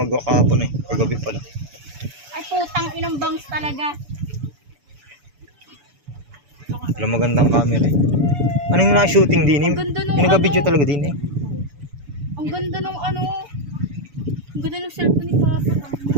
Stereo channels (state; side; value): late; left; 7.0 ms